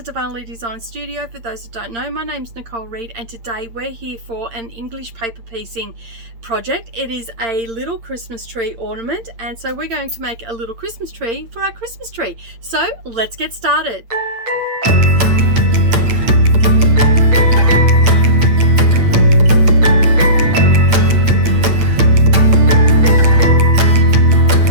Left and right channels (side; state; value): left; late; 8.7 ms